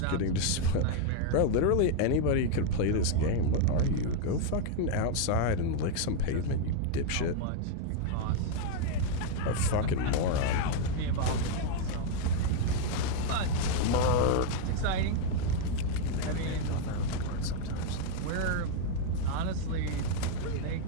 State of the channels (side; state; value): both; different; correlation 0.00